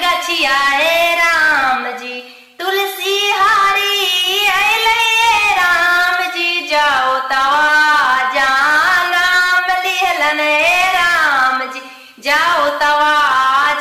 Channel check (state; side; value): identical; both; correlation 1.00